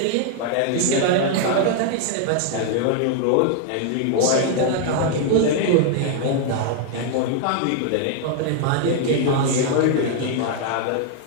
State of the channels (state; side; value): different; both; correlation 0.00